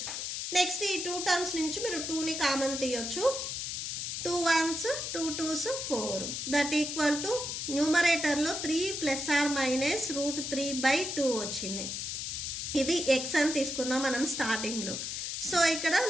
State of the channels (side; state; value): left; noise; hiss, 4 dB below the sound